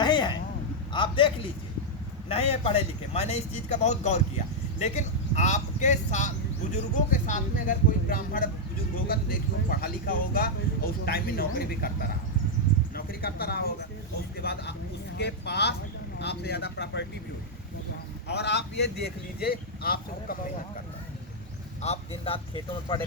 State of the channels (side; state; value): both; normal; correlation -0.03